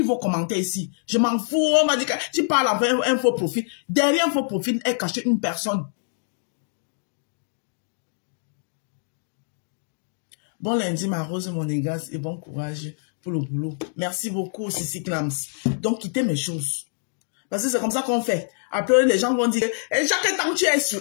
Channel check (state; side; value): silent; right; digital silence